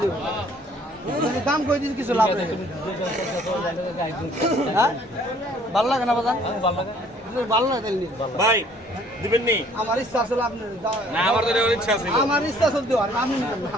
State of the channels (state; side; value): normal; both; correlation 0.58